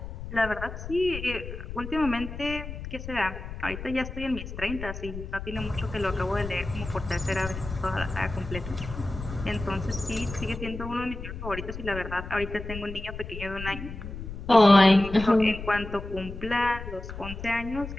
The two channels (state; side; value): noise; left; rumble, 9 dB below the sound